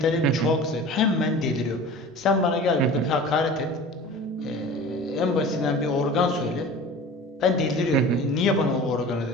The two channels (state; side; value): normal; both; correlation 0.38